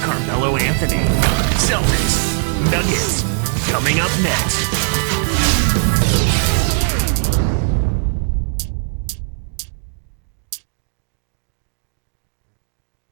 Carmelo Anthony. Celtics, Nuggets, coming up next.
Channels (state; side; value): silent; left; digital silence